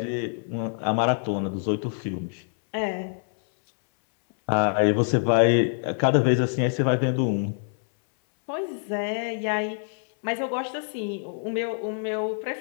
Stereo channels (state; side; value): silent; right; 61 dB below the other